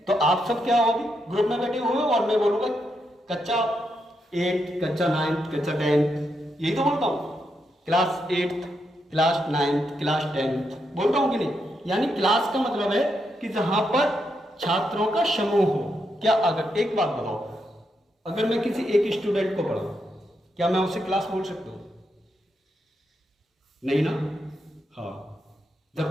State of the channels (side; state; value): both; normal; correlation 0.82